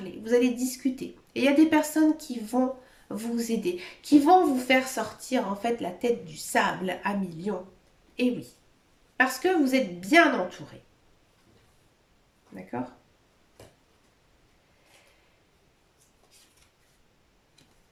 vous allez discuter. Et il y a des personnes qui vont vous aider, qui vont vous faire sortir en fait la tête du sable à millions. Et oui, parce que vous êtes bien entouré. D'accord?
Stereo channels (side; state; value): both; identical; correlation 1.00